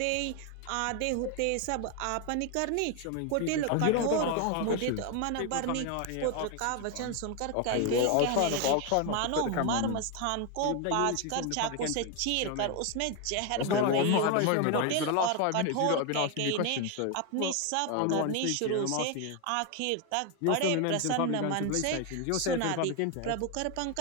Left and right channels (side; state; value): both; different; correlation 0.01